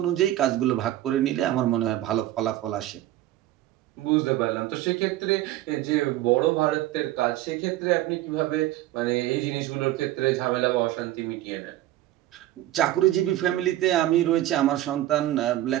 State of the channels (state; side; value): quieter; left; 14.7 dB